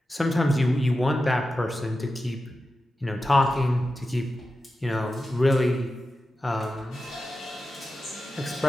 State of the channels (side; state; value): both; normal; correlation 0.91